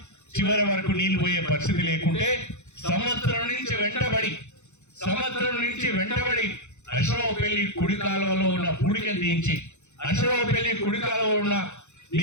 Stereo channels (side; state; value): right; late; 0.83 ms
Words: చివరి వరకు నీళ్లు పోయే పరిస్థితి లేకుంటే సంవత్సరం నుంచి వెంటబడి అశ్వరావుపల్లి కుడి కాలువలో ఉన్న పూడికను తీయించి, అశ్వరావుపల్లి కుడి కాలువలో ఉన్న